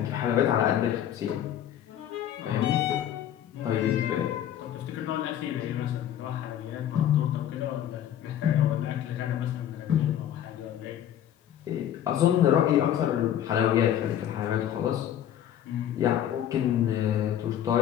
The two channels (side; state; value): right; quieter; 10.7 dB